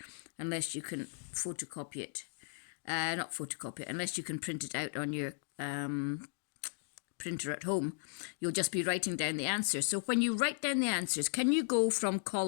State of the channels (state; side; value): silent; right; digital silence